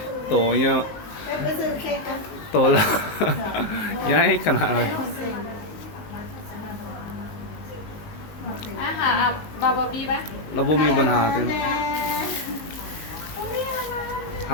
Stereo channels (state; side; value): late; right; 19 ms